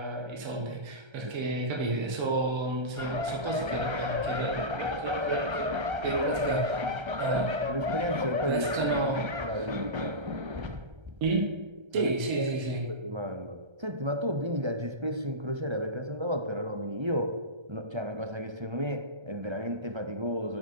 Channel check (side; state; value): left; late; 1.3 ms